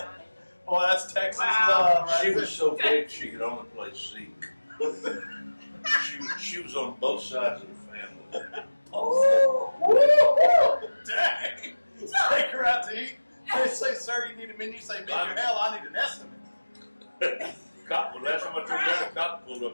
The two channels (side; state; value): both; inverted; correlation -1.00